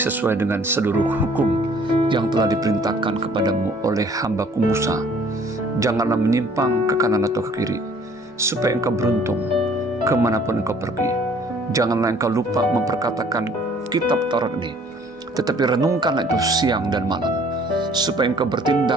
dengan seluruh hukum yang telah diperintahkan kepadamu oleh hamba-Ku Musa. Janganlah menyimpang ke kanan atau ke kiri, supaya engkau beruntung kemanapun engkau pergi. Janganlah engkau lupa memperkatakan kitab Taurat ini, tetapi renungkanlah itu siang dan malam, supaya engkau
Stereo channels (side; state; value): both; normal; correlation 0.56